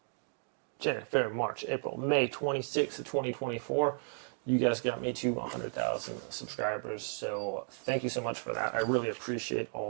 January, February, March, April, May 26th of 2024, you guys got me to 100,000 subscribers, so thank you so much for that. I really appreciate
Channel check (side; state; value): left; silent; digital silence